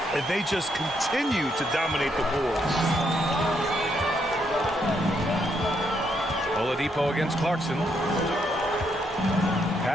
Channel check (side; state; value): both; normal; correlation 0.76